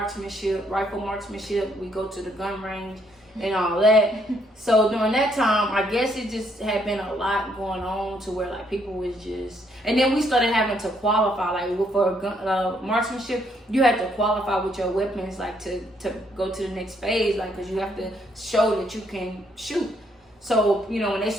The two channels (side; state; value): both; normal; correlation 0.71